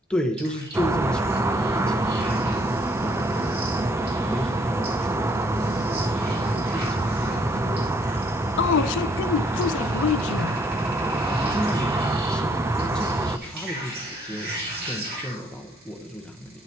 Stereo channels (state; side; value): normal; both; correlation 0.65